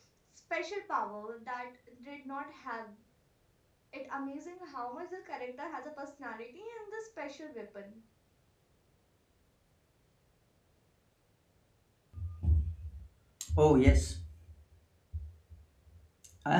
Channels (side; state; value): both; identical; correlation 1.00